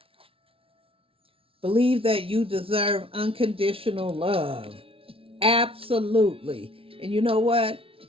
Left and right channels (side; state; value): left; late; 0.26 ms